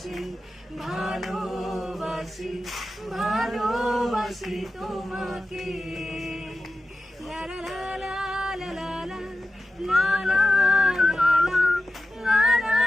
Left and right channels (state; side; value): normal; both; correlation 0.93